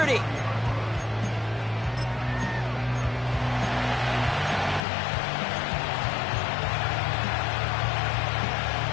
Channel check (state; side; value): drops out; right; at 4.9 s